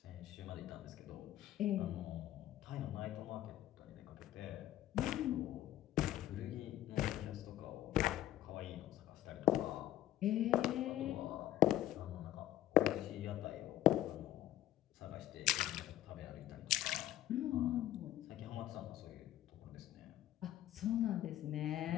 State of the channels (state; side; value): quieter; right; 13.4 dB